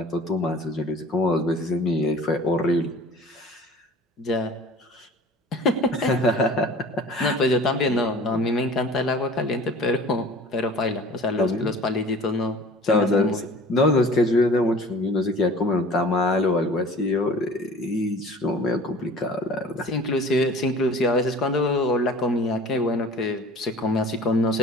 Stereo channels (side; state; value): both; normal; correlation 0.44